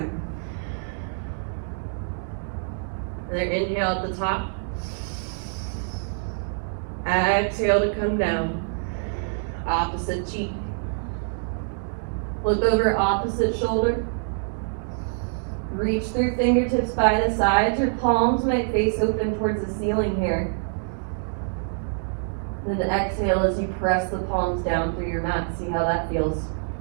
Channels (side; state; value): left; silent; digital silence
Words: Another inhale at the top. Exhale to come down. Opposite cheek. Look over opposite shoulder. Reach through fingertips by the sides. Your palms might face open towards the ceiling here. Then exhale as you press the palms down through your mat. See how that feels.